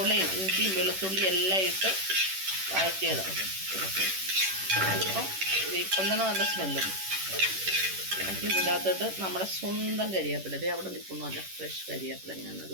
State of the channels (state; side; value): late; left; 11 ms